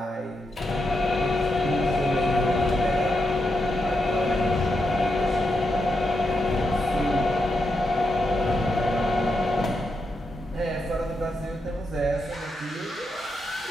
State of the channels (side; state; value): both; normal; correlation 0.84